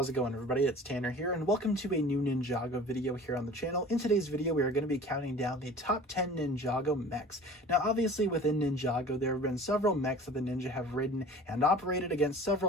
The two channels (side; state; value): both; normal; correlation 0.43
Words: it going everybody? It's Tanner here and welcome to a new Ninjago video here on the channel. In today's video, we are going to be counting down the top 10 Ninjago mechs. Now obviously within Ninjago, there have been several mechs that the ninja have ridden and operated against